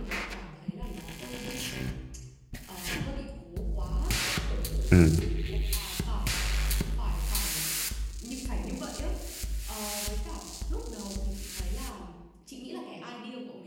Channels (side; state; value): both; identical; correlation 1.00